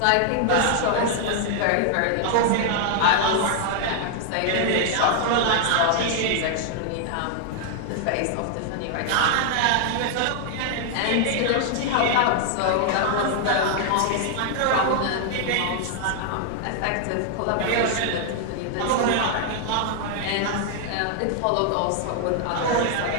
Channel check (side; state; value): both; different; correlation 0.00